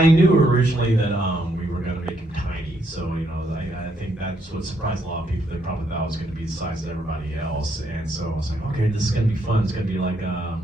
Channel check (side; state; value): both; normal; correlation 0.74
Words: knew originally that we were going to make him tiny, so I think that's what surprised a lot of people. They probably thought it was going to be the size of everybody else, and so I was like, okay, this is going to be fun. It's going to be like